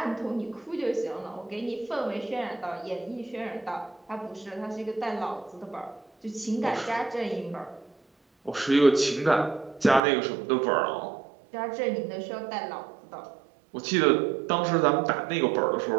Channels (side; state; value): left; drops out; at 10.0 s